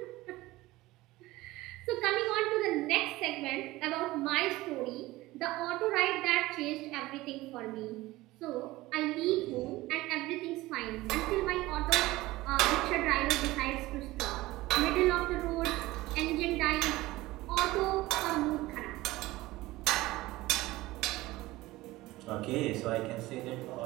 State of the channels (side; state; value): left; quieter; 18.6 dB